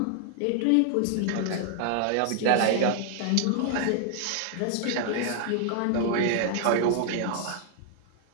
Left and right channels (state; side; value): different; both; correlation 0.00